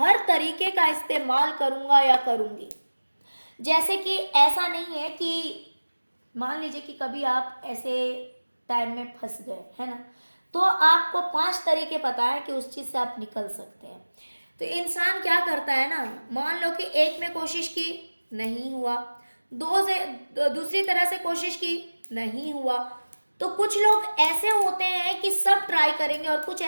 तरीके का इस्तेमाल करूंगा या करूंगी। जैसे कि ऐसा नहीं है कि मान लीजिए कि कभी आप ऐसे टाइम में फंस गए है ना, तो आपको 5 तरीके पता है कि उस चीज से आप निकल सकते हैं। तो इंसान क्या करता है ना, मान लो कि एक में कोशिश की नहीं हुआ, दो से दूसरी तरह से कोशिश की नहीं हुआ, तो कुछ लोग ऐसे होते हैं कि सब ट्राई करेंगे, और कुछ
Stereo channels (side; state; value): both; inverted; correlation -1.00